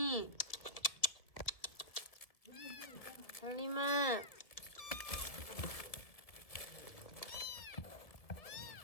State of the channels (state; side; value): late; right; 1.4 ms